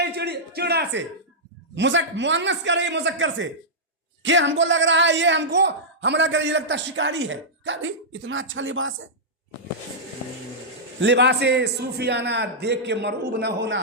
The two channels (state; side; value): normal; both; correlation -0.11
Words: چڑا سے, مؤنث کہہ رہی مذکر سے, کہ ہم کو لگ رہا ہے یہ ہم کو حملہ کرے, یہ لگتا ہے شکاری ہے. کہا بھائی اتنا اچھا لباس ہے. لباس صوفیانہ دیکھ کے مرعوب نہ ہونا,